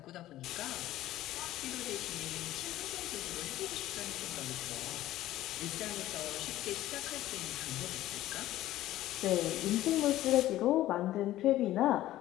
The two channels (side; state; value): right; quieter; 14.7 dB